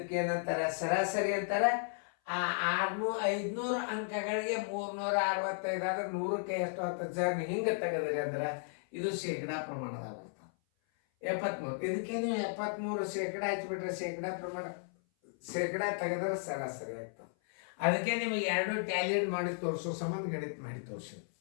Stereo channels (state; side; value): silent; right; 55 dB below the other